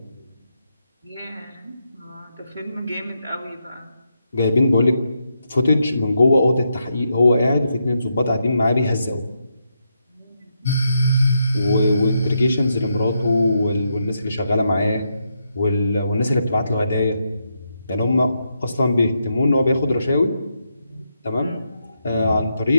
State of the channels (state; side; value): inverted; both; correlation -0.82